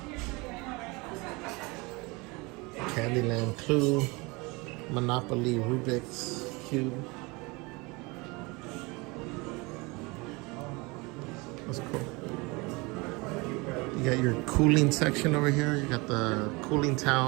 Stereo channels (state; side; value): quieter; left; 25.8 dB